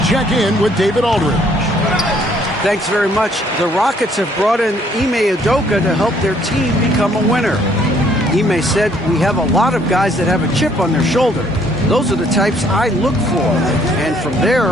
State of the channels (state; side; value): normal; both; correlation 0.64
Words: check in with David Aldridge. Thanks very much. The Rockets have brought in Ime Udoka to help their team become a winner. Ime said, "We have a lot of guys that have a chip on their shoulder. Those are the types I look for. And from